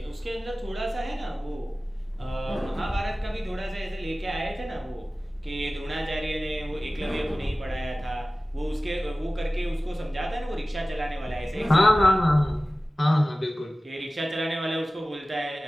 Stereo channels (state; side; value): normal; both; correlation 0.97